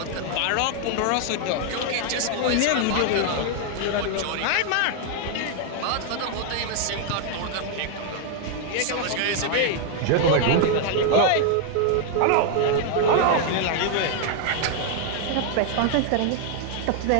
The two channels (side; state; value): both; different; correlation 0.00